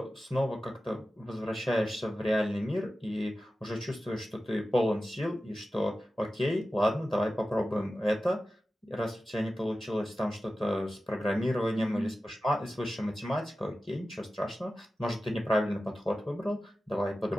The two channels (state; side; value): normal; both; correlation 0.94